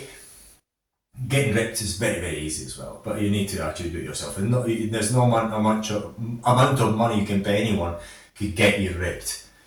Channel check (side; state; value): both; identical; correlation 1.00